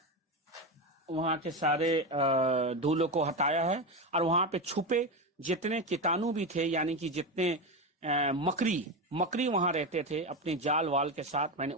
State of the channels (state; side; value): normal; both; correlation 0.16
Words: के सारे धूलों को हटाया है और वहां पे छुपे जितने कीटाणु भी थे यानी कि जितने मकड़ी वहां रहते थे अपने जाल वाल के साथ मैंने